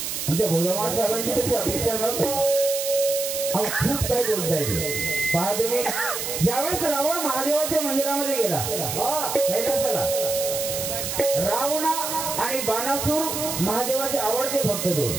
त्या बोधवाड साहेबांची तशी अपेक्षा नव्हती। खूप काय बोलताय पहा तुम्ही। ज्यावेळेस रावण महादेवाच्या मंदिरामध्ये गेला कैलासाला, रावणा आणि बाणासूर महादेवाचे आवडते भक्त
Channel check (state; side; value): noise; right; hiss, 4 dB below the sound